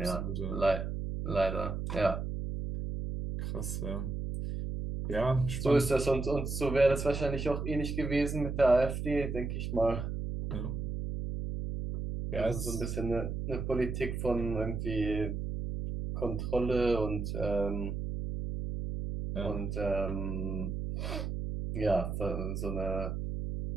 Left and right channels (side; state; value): right; noise; hum, 3 dB below the sound